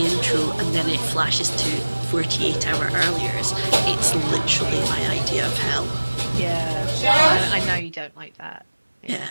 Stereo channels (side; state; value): both; inverted; correlation -1.00